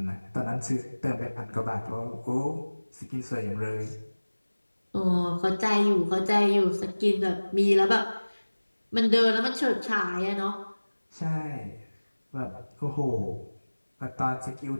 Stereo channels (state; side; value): inverted; both; correlation -1.00